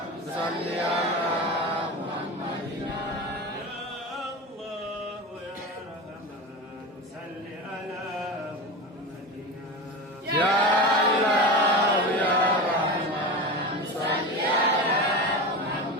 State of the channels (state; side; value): normal; both; correlation 0.26